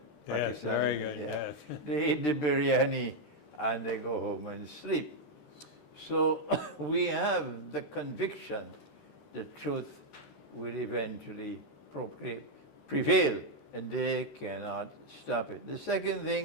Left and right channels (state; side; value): late; right; 13 ms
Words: Yes, very good, yeah. yes. They eat the biryani and they go home and sleep. So we have the conviction that truth will eventually prevail, and they cannot stop it. The second